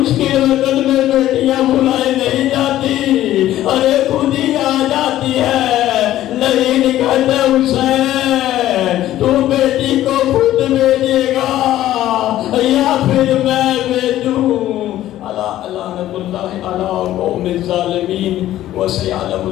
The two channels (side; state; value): right; quieter; 13.6 dB